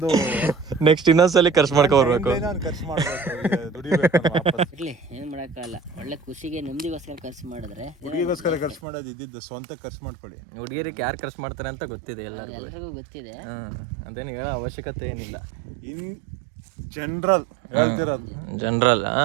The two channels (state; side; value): drops out; left; at 8.8 s